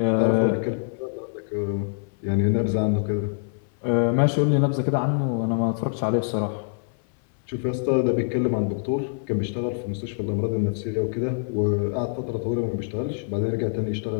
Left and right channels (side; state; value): right; silent; 62 dB below the other